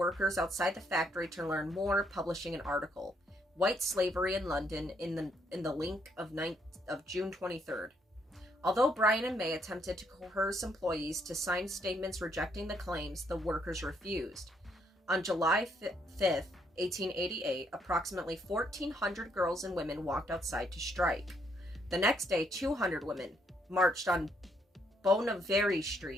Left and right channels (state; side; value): normal; both; correlation 0.72